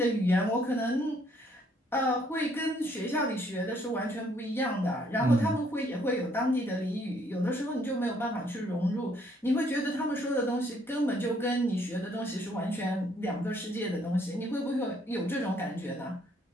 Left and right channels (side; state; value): both; normal; correlation 0.67